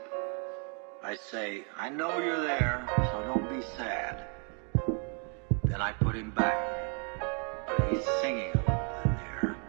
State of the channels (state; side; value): quieter; left; 39.6 dB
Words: I say, I know you're there, so don't be sad. Then I put him back. But he's singing a little in there.